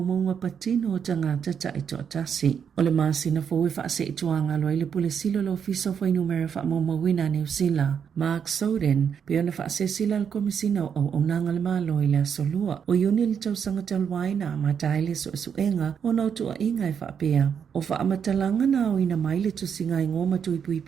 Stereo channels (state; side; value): quieter; left; 7.4 dB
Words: patino o tangata taito o tasi. O le masina fo e wha se ituanga lo I le pule silo lo fiso fo inumera wha maumawina New Zealand. Mark Soden, pe ona wha se sila al komisina o nanga le malo I le asolua. O yuni li tau sanga talwaina ma taile so suenga o nautua inga e wha pia. O wha amatalanga na o ina maile tu singa I ngoma tu